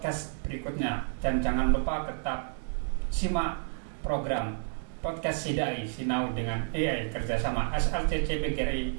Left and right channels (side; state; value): left; silent; digital silence